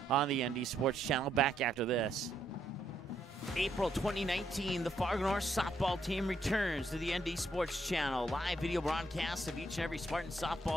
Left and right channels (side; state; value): both; normal; correlation 0.75